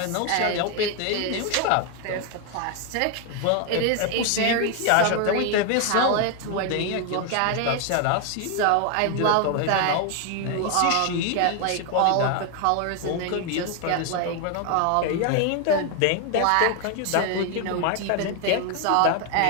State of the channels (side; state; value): both; different; correlation 0.01